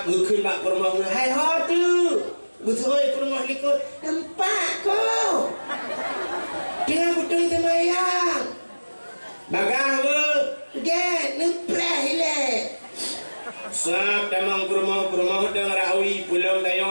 ngukun bak rumah. Hai ho tu. Betul rumah liko tempat ko. Tengah betul semayang. Bagang we. Dia nemplah ile. Sab tamang kurma dang rawi pulau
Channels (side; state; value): both; inverted; correlation -1.00